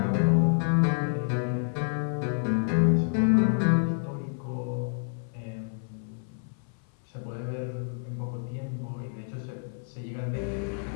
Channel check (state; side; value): silent; right; 59 dB below the other